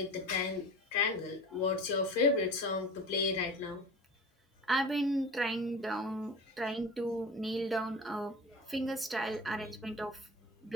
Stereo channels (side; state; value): both; normal; correlation 0.35